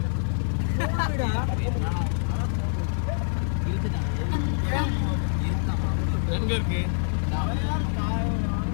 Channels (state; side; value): silent; right; digital silence